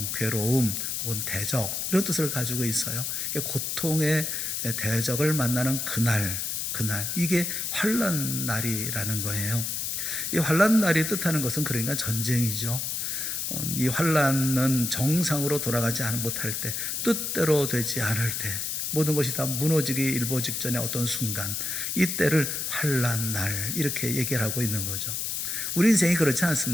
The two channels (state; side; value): noise; left; hiss, 2 dB below the sound